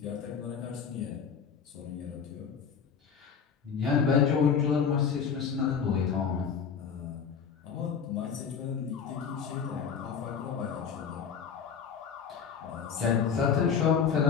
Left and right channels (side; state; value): right; quieter; 6.8 dB